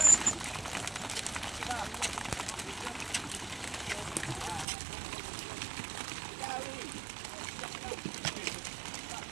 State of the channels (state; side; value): drops out; left; at 4.7 s